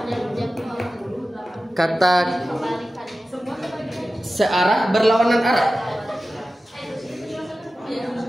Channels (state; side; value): normal; both; correlation 0.94